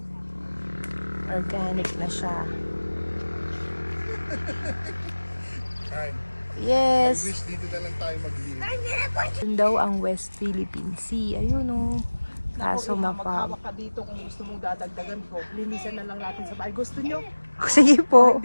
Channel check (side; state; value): both; inverted; correlation -1.00